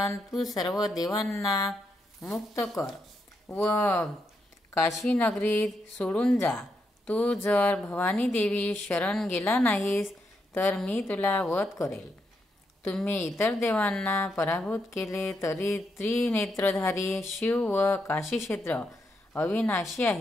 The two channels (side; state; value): both; normal; correlation 0.81